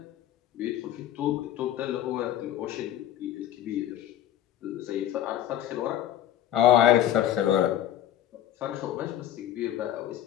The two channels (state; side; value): quieter; right; 11.9 dB